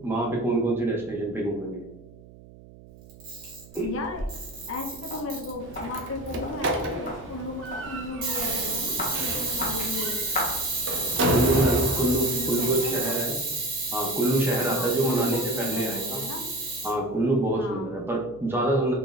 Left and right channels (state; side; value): noise; right; hum, 21 dB below the sound